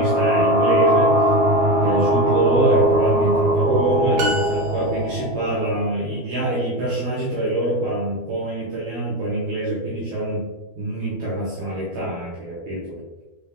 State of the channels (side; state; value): left; late; 12 ms